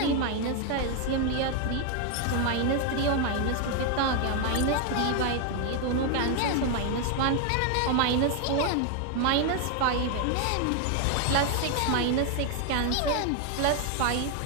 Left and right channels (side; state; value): both; different; correlation 0.01